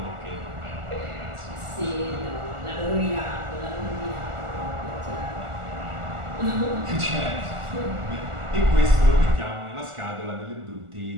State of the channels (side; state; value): left; late; 1.4 ms